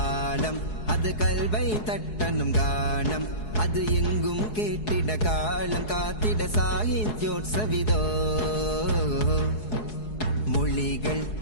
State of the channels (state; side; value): late; right; 4.7 ms